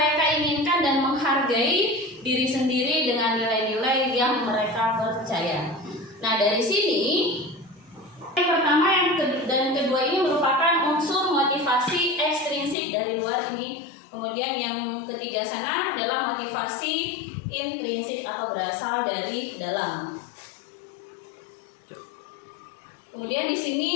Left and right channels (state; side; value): drops out; right; at 12.8 s